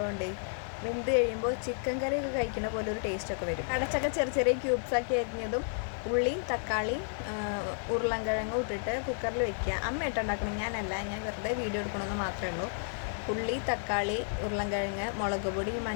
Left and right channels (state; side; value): silent; right; digital silence